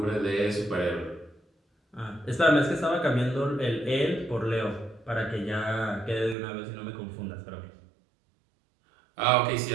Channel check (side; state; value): left; drops out; at 6.4 s